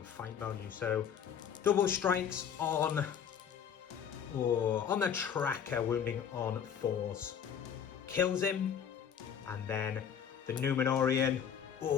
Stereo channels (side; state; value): right; quieter; 7.9 dB